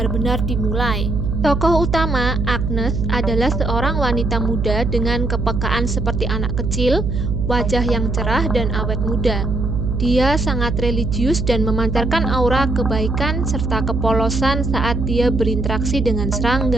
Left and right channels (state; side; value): noise; right; hum, 1 dB below the sound